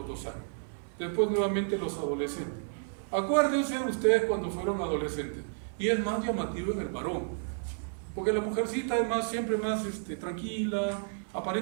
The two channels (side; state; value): left; silent; 55 dB below the other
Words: 2 años. Después nuevamente los adolescentes. Acuérdense ustedes cuando fueron adolescentes, y es más llamativo en el varón, porque la mujercita es más, siempre más tranquila,